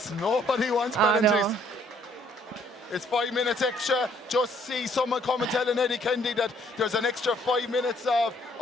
Nobody wants penalties. No. It's 5 minutes extra. Just see someone come and telling Eddie Kennedy that there's an extra 5 minutes of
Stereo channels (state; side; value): normal; both; correlation 0.64